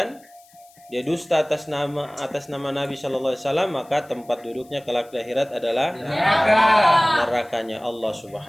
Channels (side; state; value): left; noise; hiss, 28 dB below the sound